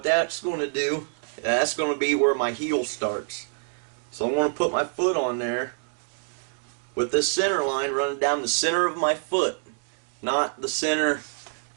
that's going to do, that's going to be where my heel starts. So I'm going to put my foot on there with this center line running down the center of my foot, not the center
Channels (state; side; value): silent; left; digital silence